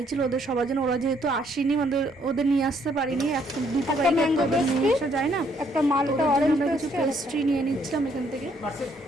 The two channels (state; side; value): normal; both; correlation 0.68